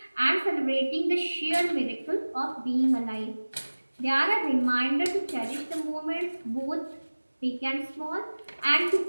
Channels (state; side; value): inverted; both; correlation -1.00